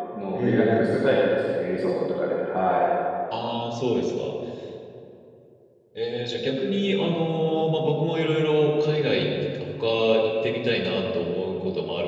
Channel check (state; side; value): identical; both; correlation 1.00